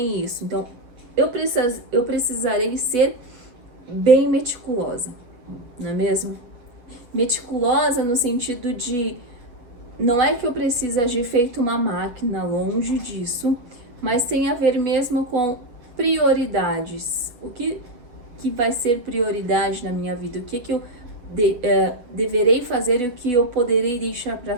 isso. Então, eu precisarei ser bem meticulosa, não é mesmo? Meticulosa no sentido de, não é que eu preciso agir feito uma máquina, longe disso, mas tem a ver mesmo com prioridades. O que vai ser prioridade na minha vida? O que eu deverei fazer e o que eu poderei deixar para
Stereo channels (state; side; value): late; left; 7.9 ms